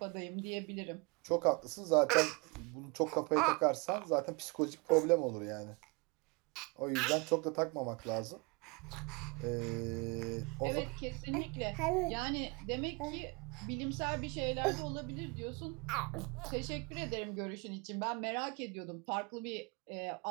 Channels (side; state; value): left; quieter; 29.6 dB